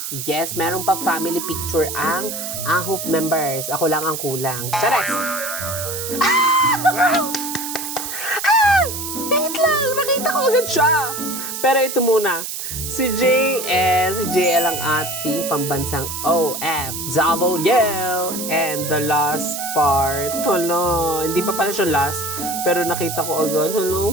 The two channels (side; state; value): right; noise; hiss, 6 dB below the sound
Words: Yes, meron pa family picture ang ahop members. Ako lang ang kulang. Chares! Wait lang! Nakita ko agad siya. Pero ito muna. Si JL ang ating pambansang OFW. And the last part, hala, hindi pa pala siya last, pero nakita ko agad, hala,